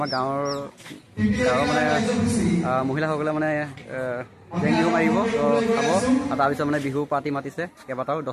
গাঁৱৰ মানে মহিলাসকলে মানে জেং বিহু মাৰিব, তো চাব। আৰু তাৰপিছত মানে বিহু পাৰ্টি মাতিছে কেইবাটাও,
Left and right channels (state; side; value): identical; both; correlation 1.00